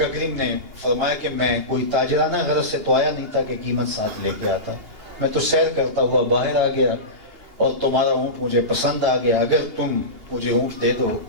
کریم نے فرمایا کہ میں کوئی تاجرانہ غرض سے تو آیا نہیں تھا کہ قیمت ساتھ لے کے آتا. میں تو سیر کرتا ہوا باہر آ گیا اور تمہارا اونٹ مجھے پسند آ گیا. اگر تم مجھے اونٹ دے دو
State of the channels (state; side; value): late; left; 2.8 ms